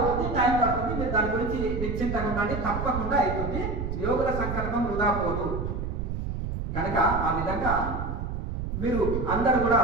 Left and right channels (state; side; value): noise; right; rumble, 4 dB below the sound